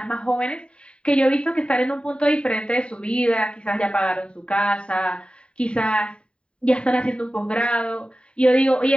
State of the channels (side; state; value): right; late; 0.053 ms